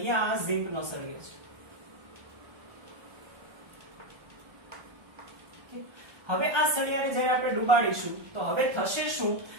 આ ઝિંકનો સળિયો છે। હવે આ સળિયાને જ્યારે આપણે ડુબાડીશું તો હવે થશે શું,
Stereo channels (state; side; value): late; left; 1.3 ms